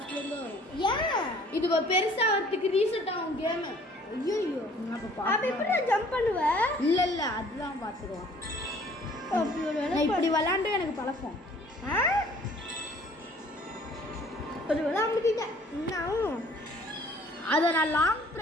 இருந்து வரும். ஏன் இது பெருசா வரதுக்கு ரீசெட் ஆகும் கேம். ஐயோ அப்ப எப்படி நான் ஜம்ப் பண்ணுவேன் இல்ல அதுதான் பாத்துருவோம். நான் இப்படி விளையாண்டு எனக்கு பழக்கம். ஒரு வேலை அமுக்கிட்டேன் இன்னும் அதை நான் லாங்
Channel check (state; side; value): normal; both; correlation 0.55